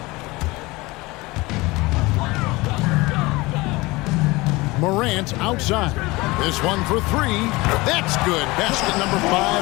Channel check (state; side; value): quieter; right; 22.1 dB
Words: Morant outside. This one for 3. That's good. Basket number